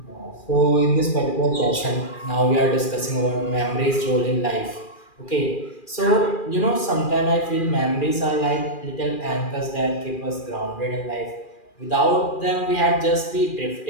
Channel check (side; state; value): right; late; 2.4 ms